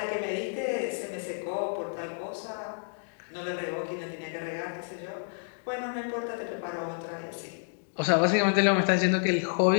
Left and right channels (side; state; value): right; silent; digital silence